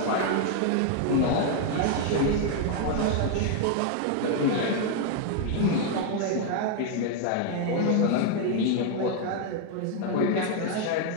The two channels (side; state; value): both; different; correlation 0.00